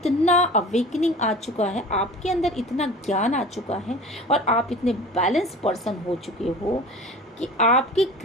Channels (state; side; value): normal; both; correlation 0.39